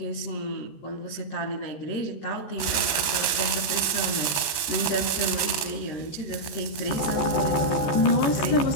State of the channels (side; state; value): right; late; 14 ms